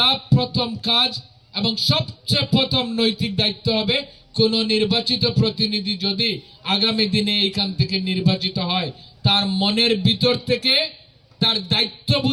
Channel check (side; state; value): both; identical; correlation 1.00